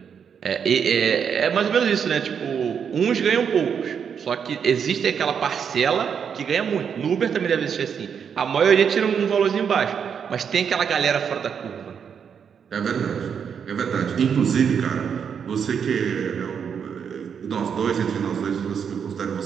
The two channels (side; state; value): left; quieter; 7.2 dB